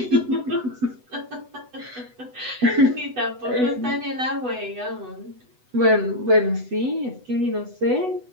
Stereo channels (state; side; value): late; left; 8.0 ms